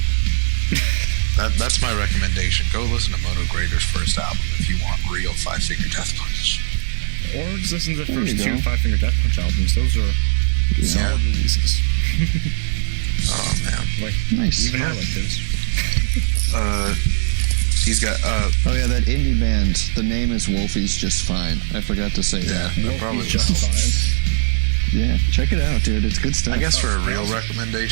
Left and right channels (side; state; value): left; silent; 62 dB below the other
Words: That's my recommendation. Go listen to Moto Grader's first album if you want real Five Finger Death Punch. Or just listen to the There first you two go. Five Finger Death Punch albums. Those are solid releases. Oh, man. Like, Nice. even I like those. He's got, Oh yeah, that indie band. The name is Wolfie's Just Fine. I forgot to say that. that probably Wolfie's Just Fine. Yeah, check it out, dude. It's good stuff. I guess for a real